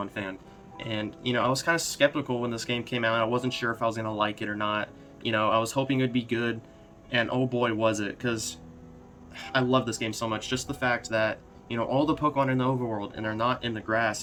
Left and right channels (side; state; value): both; identical; correlation 1.00